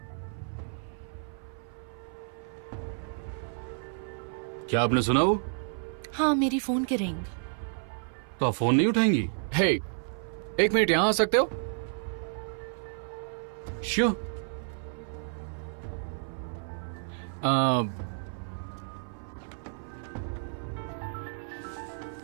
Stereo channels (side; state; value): left; silent; 55 dB below the other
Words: क्या आपने सुना वो? हाँ, मेरी फोन की रिंग। तो आप फोन नहीं उठाएंगी? हे, एक मिनट यहां आ सकते हो? श्योर।